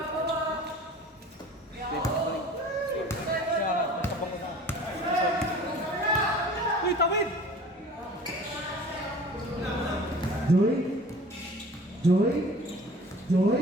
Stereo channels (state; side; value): normal; both; correlation 0.44